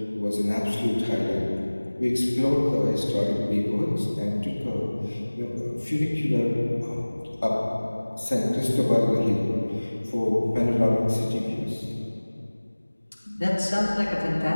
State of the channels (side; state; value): both; inverted; correlation -1.00